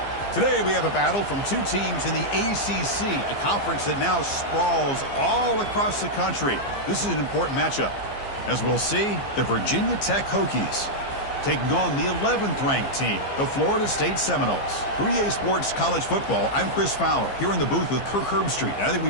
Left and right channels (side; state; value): right; late; 15 ms